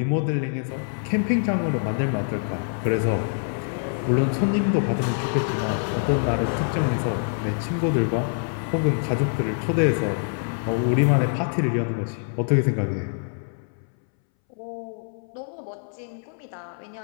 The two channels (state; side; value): silent; right; 62 dB below the other